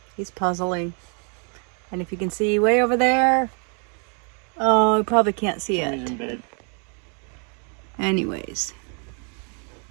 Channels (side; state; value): left; quieter; 38.7 dB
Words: He's puzzling, and if you can see way over there, oh, you probably can't see it. He's in bed. Anyways,